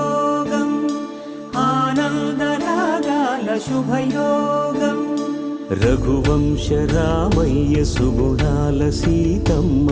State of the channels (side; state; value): both; identical; correlation 1.00